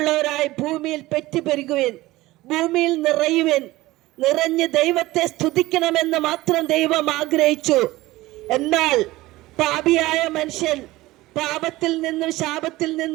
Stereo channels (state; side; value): quieter; left; 18.5 dB